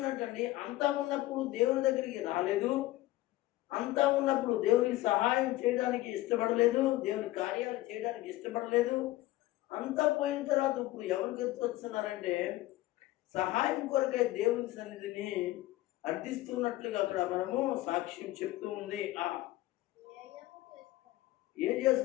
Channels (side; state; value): right; quieter; 17.0 dB